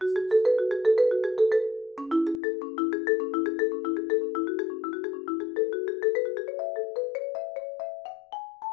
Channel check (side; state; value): right; drops out; at 2.4 s